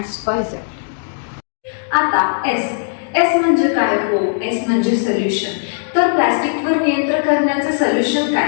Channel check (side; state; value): right; silent; digital silence